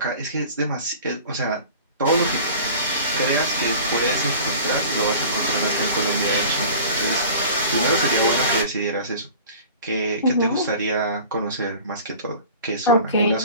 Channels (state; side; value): inverted; both; correlation -0.42